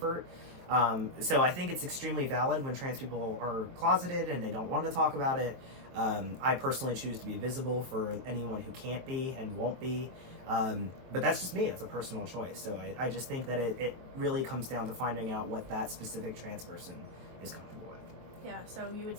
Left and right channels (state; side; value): late; left; 23 ms